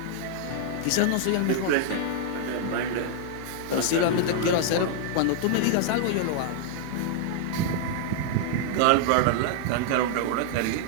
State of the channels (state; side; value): different; both; correlation -0.01